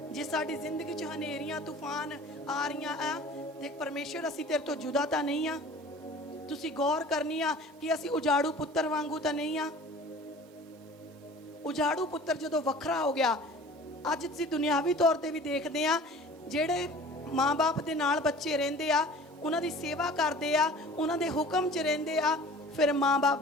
ਜੇ ਸਾਡੀ ਜ਼ਿੰਦਗੀ 'ਚ ਹਨੇਰੀਆਂ ਤੂਫਾਨ ਆ ਰਹੀਆਂ ਆ ਤੇ ਪਰਮੇਸ਼ਵਰ, ਅਸੀਂ ਤੇਰੇ ਤੋਂ ਜੁਦਾ ਤਾਂ ਨਹੀਂ ਆ। ਤੁਸੀਂ ਗੌਰ ਕਰਨੀ ਆ ਕਿ ਅਸੀਂ ਉਜਾੜੂ ਪੁੱਤਰ ਵਾਂਗੂ ਤਾਂ ਨਹੀਂ ਆ। ਉਜਾੜੂ ਪੁੱਤਰ ਜਦੋਂ ਵੱਖਰਾ ਹੋ ਗਿਆ, ਅੱਜ ਅਸੀਂ ਦੁਨਿਆਵੀ ਤੌਰ ਤੇ ਵੀ ਦੇਖਦੇ ਆ, ਜਿਹੜੇ ਮਾਂ-ਬਾਪ ਦੇ ਨਾਲ ਬੱਚੇ ਰਹਿੰਦੇ ਆ, ਉਹਨਾਂ ਦੀ ਸੇਵਾ ਕਰਦੇ ਆ, ਉਹਨਾਂ ਦੇ ਹੁਕਮ 'ਚ ਰਹਿੰਦੇ ਆ, ਫਿਰ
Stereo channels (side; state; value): both; normal; correlation 0.44